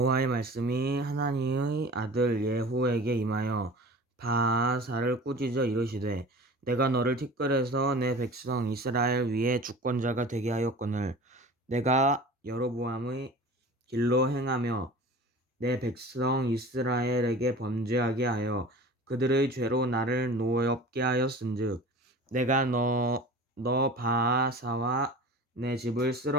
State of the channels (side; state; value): both; normal; correlation 0.38